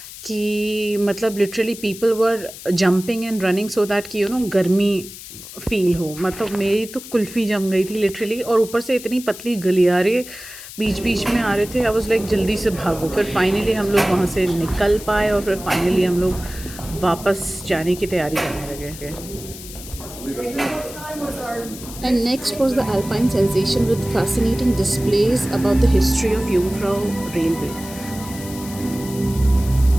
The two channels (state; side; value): noise; left; hiss, 14 dB below the sound